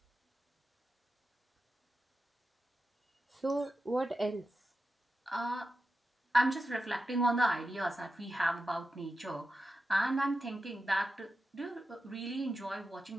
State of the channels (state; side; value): normal; both; correlation 0.90